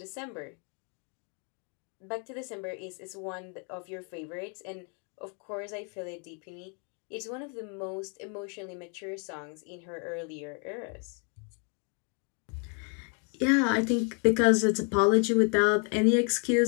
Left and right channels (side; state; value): right; quieter; 39.0 dB